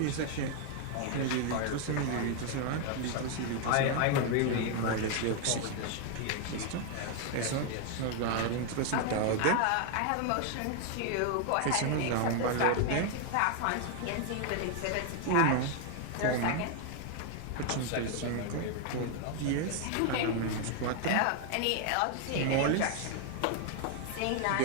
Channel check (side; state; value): both; different; correlation 0.00